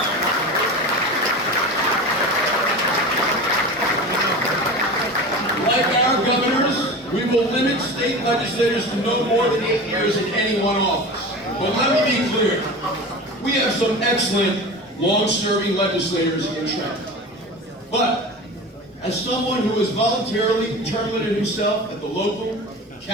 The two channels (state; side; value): normal; both; correlation 0.31